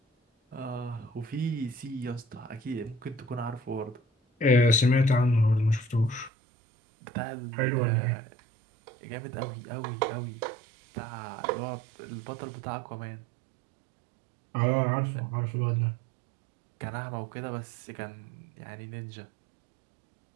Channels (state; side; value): drops out; left; at 6.3 s